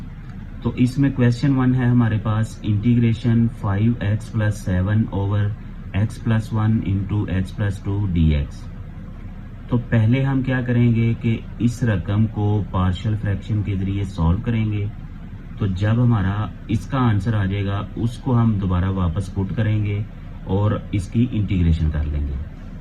तो इसमें क्वेश्चन 1 है हमारे पास, integration 5x + 7 over x + 1 into x + 2 dx। तो पहले हम क्या करेंगे कि इस रकम को पार्शियल फ्रैक्शन के जरिए सॉल्व करेंगे। तो जब हमारा इसका आंसर आ जाएगा उसको हम दोबारा वापस पुट करेंगे और इसकी इंटीग्रेशन कर लेंगे।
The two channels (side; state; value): both; identical; correlation 1.00